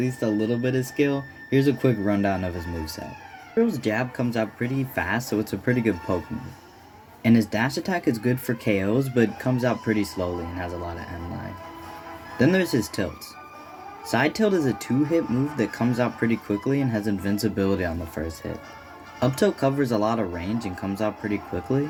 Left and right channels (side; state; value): both; identical; correlation 1.00